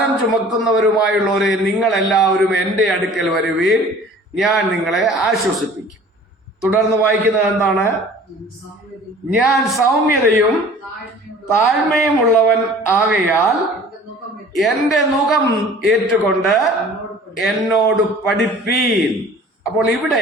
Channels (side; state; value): both; normal; correlation 0.47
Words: ചുമക്കുന്നവരുമായുള്ളവരെ നിങ്ങൾ എല്ലാവരും എൻ്റെ അടുക്കൽ വരുവീൻ, ഞാൻ നിങ്ങളെ ആശ്വസിപ്പിക്കും. തുടർന്ന് വായിക്കുന്നത് എന്താണ്? ഞാൻ സൗമ്യതയും താഴ്മയും ഉള്ളവൻ ആകയാൽ എൻ്റെ നുകം ഏറ്റുകൊണ്ട് എന്നോട് പഠിപ്പീൻ. അപ്പോൾ